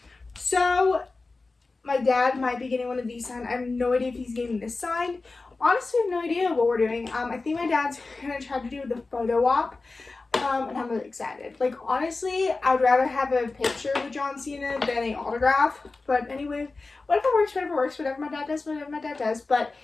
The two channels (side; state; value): right; quieter; 3.7 dB